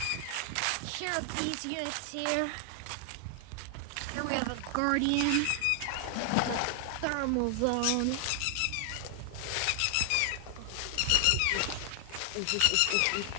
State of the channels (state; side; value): different; both; correlation 0.00